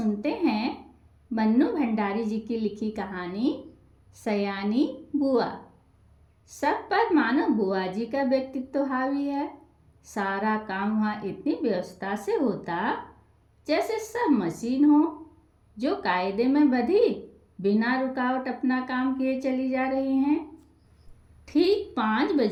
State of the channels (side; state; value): both; identical; correlation 1.00